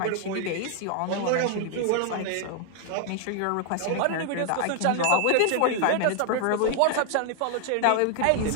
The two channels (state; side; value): different; both; correlation 0.00